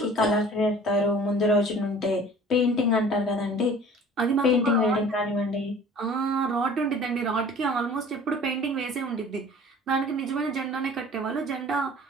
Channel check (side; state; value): both; normal; correlation 0.47